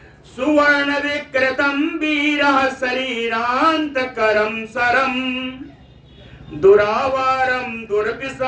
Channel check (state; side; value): identical; both; correlation 1.00